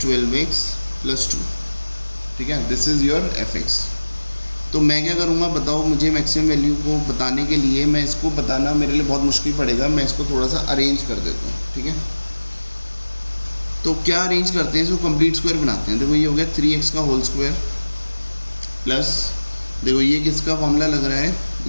+ 2, ठीक है, दिस इज़ योर f(x). तो मैं क्या करूँगा बताओ, मुझे मैक्सिमम वैल्यू को बताने के लिए मैं इसको बताना मेरे लिए बहुत मुश्किल पड़ेगा, मैं इसको थोड़ा सा अरेंज कर देता हूँ, ठीक है। तो क्या अरेंज करते हैं, इसको कंप्लीट स्क्वायर बनाते हैं। देखो ये हो गया 3x का होल स्क्वायर प्लस, देखो ये किसका फॉर्मूला लग रहा है,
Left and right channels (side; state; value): both; inverted; correlation -1.00